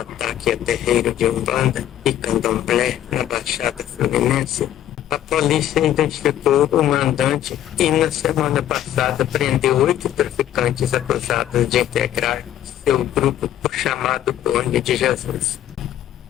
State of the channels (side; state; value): right; quieter; 11.6 dB